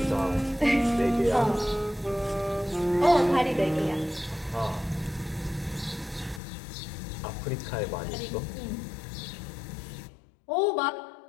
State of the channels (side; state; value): right; drops out; at 6.4 s